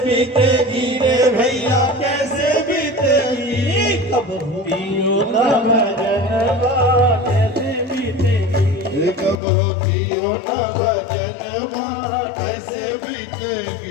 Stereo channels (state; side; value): drops out; right; at 9.4 s